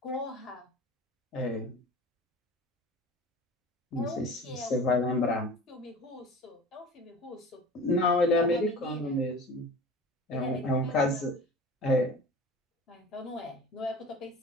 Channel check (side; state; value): both; normal; correlation 0.38